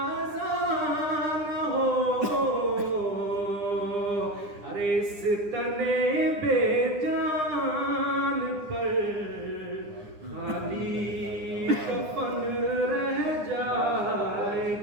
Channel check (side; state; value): left; late; 9.8 ms